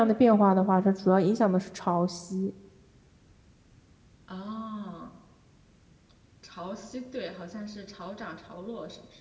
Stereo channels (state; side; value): identical; both; correlation 1.00